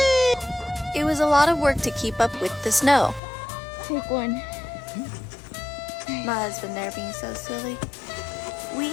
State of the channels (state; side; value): drops out; right; at 3.2 s